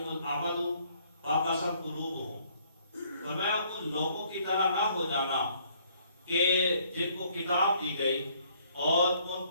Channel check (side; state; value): both; inverted; correlation -0.63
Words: الْأَمَدُ فَقَسَتْ قُلُوبُهُمْ۔ فرمایا ان لوگوں کی طرح نہ ہو جانا کہ جن کو کتاب دی گئی اور ان